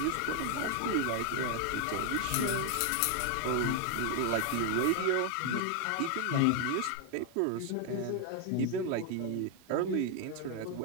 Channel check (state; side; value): different; both; correlation 0.01